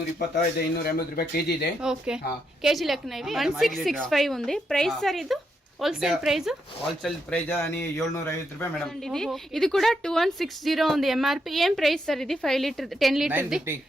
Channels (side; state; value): both; normal; correlation 0.80